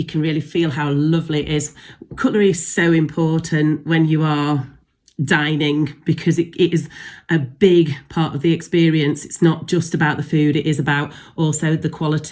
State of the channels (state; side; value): identical; both; correlation 1.00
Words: feel how lovely it is. Cutlery is so important when you are dining, because it is a big part of the experience. It's not just about the food, it is about also the